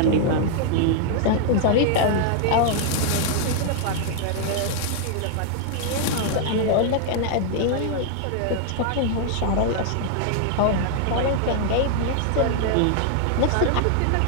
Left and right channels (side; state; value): both; different; correlation -0.01